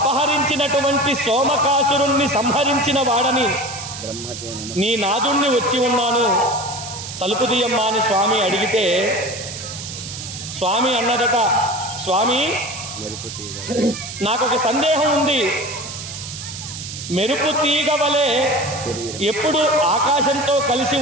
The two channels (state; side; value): noise; right; hiss, 9 dB below the sound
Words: సోమకాసురుణ్ణి సంహరించిన వాడని, నీ నాదుణ్ణి వచ్చి ఉన్నాను, తలుపు తీయమ్మా అని స్వామి అడిగితే స్వామి అన్నదట, స్వామి నాకొక సందేహం ఉంది, మెరుపు తీగ వలె ఎప్పుడు ఆకాశంతో కలిసి